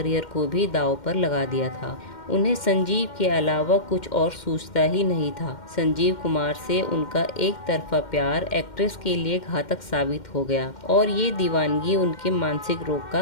को भी दांव पर लगा दिया था। उन्हें संजीव के अलावा कुछ और सूझता ही नहीं था। संजीव कुमार से उनका एक तरफा प्यार एक्ट्रेस के लिए घातक साबित हो गया और ये दीवानगी उनके मानसिक रोग का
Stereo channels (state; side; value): late; right; 2.1 ms